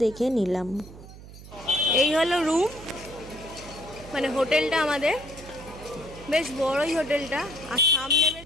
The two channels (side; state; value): right; noise; hum, 17 dB below the sound